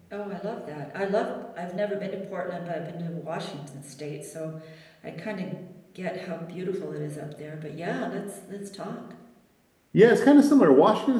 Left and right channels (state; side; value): identical; both; correlation 1.00